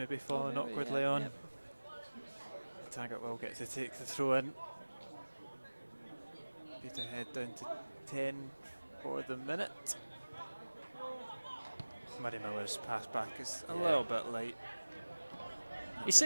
fallen awkwardly on. Yep. Taggart will get to take the throw in. Peterhead down to 10 for the minute. Murray Miller's pass back is a little bit light. He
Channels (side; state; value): both; inverted; correlation -1.00